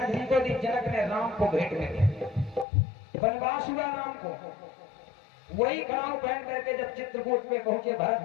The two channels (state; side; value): drops out; right; at 2.7 s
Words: जी को दी। जनक ने राम को भेंट में दिया। वनवास हुआ राम को। वही खड़ाऊ पहन करके जब चित्रकूट पे पहुंचे, भरत